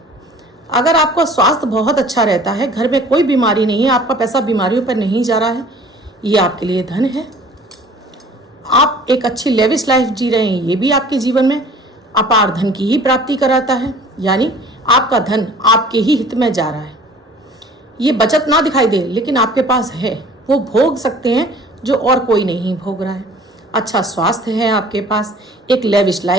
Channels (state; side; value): normal; both; correlation 0.49